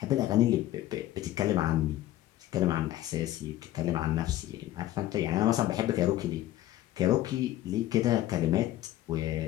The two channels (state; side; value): quieter; right; 14.3 dB